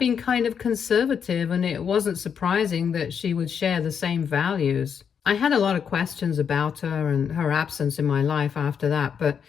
kind of conservative, and it wasn't surprising that she would share the same values. I had a lot of questions about her and her absence in my life after that, but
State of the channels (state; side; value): quieter; right; 7.3 dB